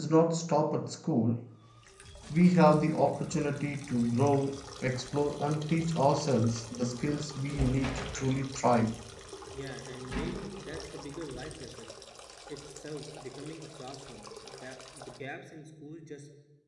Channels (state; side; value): identical; both; correlation 1.00